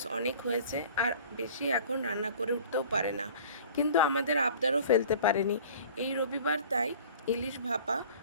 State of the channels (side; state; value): both; inverted; correlation -0.46